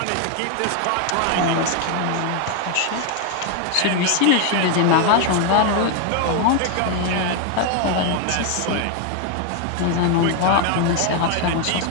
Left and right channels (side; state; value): both; different; correlation 0.01